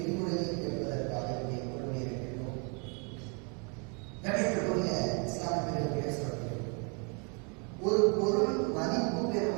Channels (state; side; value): quieter; left; 35.4 dB